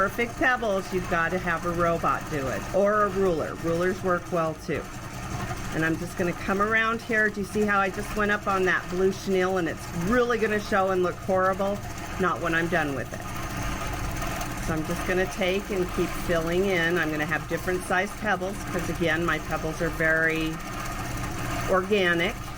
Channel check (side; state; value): both; identical; correlation 1.00